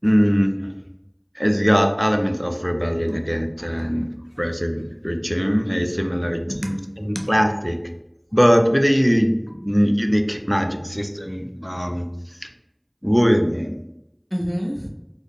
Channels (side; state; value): both; identical; correlation 1.00